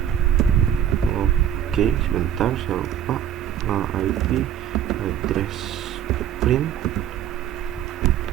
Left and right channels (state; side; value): quieter; left; 10.0 dB